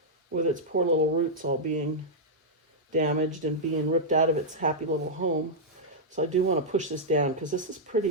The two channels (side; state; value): both; normal; correlation -0.07